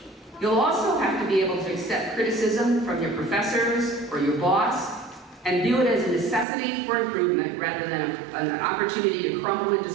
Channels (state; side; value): drops out; left; at 6.5 s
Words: You'll also have to be able to accept criticism from your professors or your boss and view it as a necessity for improvement rather than an opportunity to crumble in